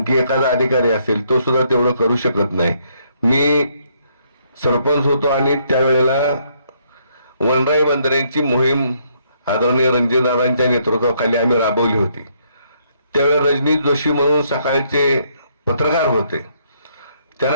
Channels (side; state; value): both; inverted; correlation -0.71